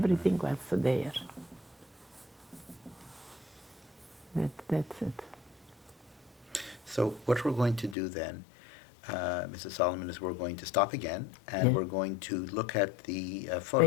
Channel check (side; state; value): right; drops out; at 8.0 s